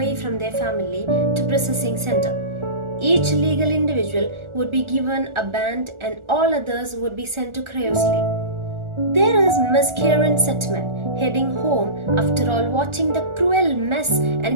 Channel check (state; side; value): late; left; 1.4 ms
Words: from their family to processing center. Each legal individual would be given a band and all others would be sent to cryosleep. There is Miss Karen Setman heading home after all watching the cruel mess